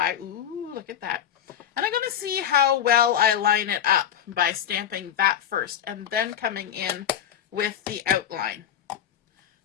Ooh, look at that. And I'm going to see how well I line it up by stamping that first and then coming in with the outline.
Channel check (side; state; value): right; quieter; 9.8 dB